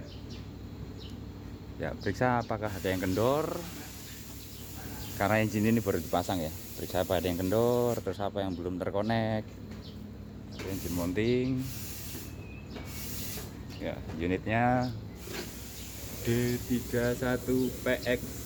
Ya, periksa apakah ada yang kendor. Karena engine ini baru dipasang ya. Periksa apa ada yang kendor, terus apa yang belum terkonek. Engine mounting. Ya, unitnya D31PX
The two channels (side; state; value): both; identical; correlation 1.00